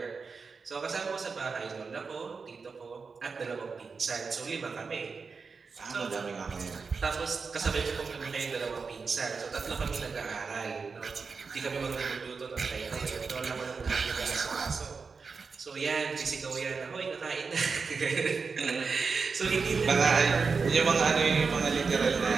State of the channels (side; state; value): left; quieter; 4.9 dB